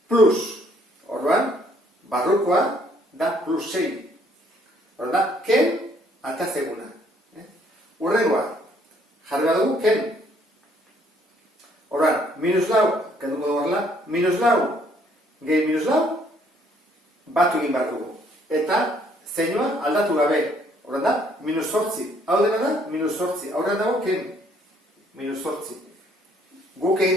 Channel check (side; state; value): both; normal; correlation 0.65